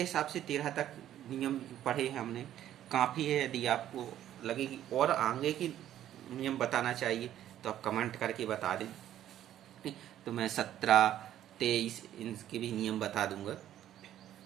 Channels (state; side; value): quieter; left; 11.8 dB